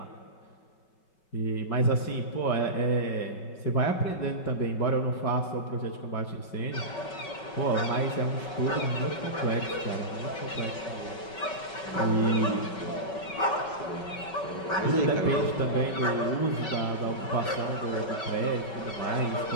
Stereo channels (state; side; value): late; right; 5.3 ms